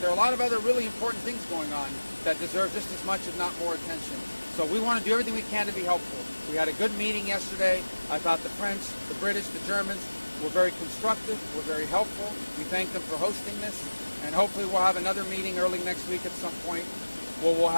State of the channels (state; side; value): inverted; both; correlation -1.00